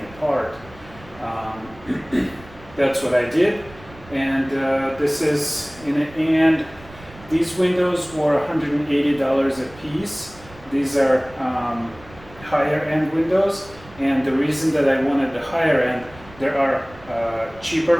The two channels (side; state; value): right; noise; rumble, 21 dB below the sound